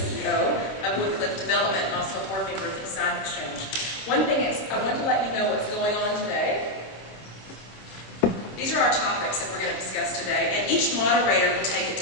of Woodcliff Development, and also a board member of the Design Exchange. One thing is, I want to let you know what's going on today. These are our topics that we're going to discuss today, and each moderator will take a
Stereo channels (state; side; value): late; right; 26 ms